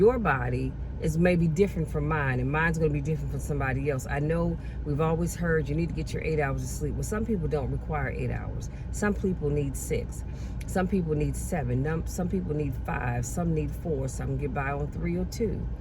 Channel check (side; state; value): both; identical; correlation 1.00